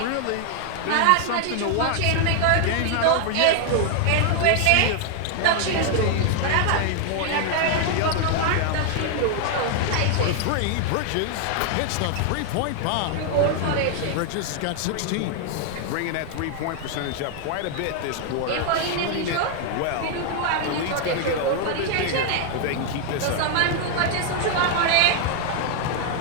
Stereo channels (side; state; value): both; different; correlation 0.00